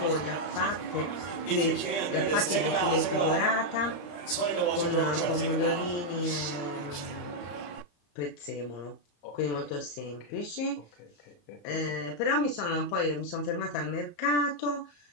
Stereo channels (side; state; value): right; late; 34 ms